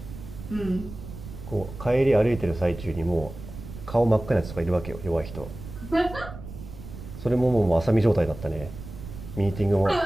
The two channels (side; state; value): right; noise; rumble, 12 dB below the sound